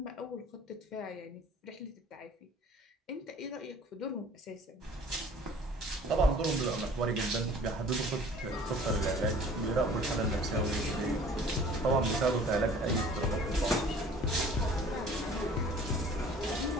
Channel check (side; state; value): both; normal; correlation 0.50